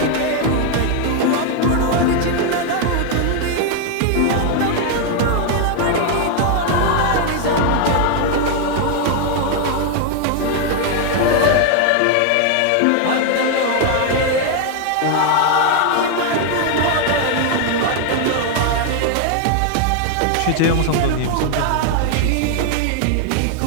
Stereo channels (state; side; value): different; both; correlation 0.00